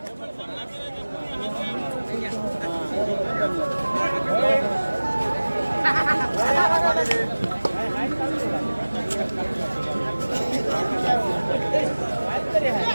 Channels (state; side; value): inverted; both; correlation -1.00